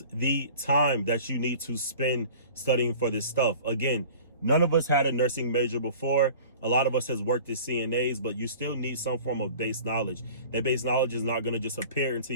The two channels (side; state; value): both; inverted; correlation -0.44